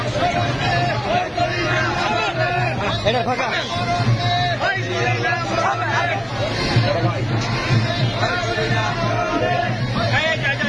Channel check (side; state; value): both; identical; correlation 1.00